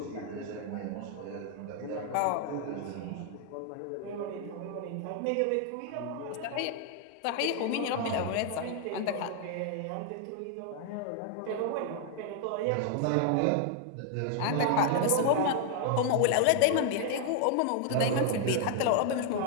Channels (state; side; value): different; both; correlation 0.00